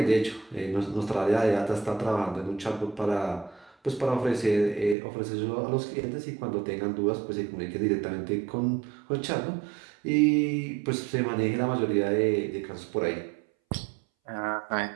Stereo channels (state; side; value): drops out; left; at 5.0 s